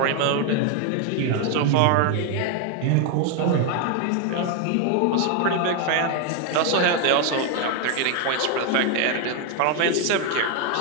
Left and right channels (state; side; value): different; both; correlation 0.01